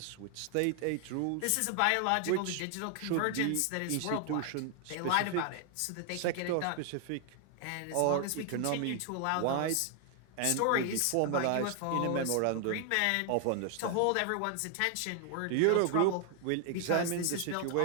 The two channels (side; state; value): both; different; correlation 0.00